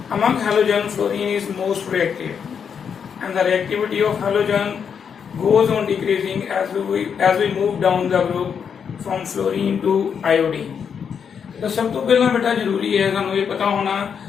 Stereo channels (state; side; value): quieter; right; 7.1 dB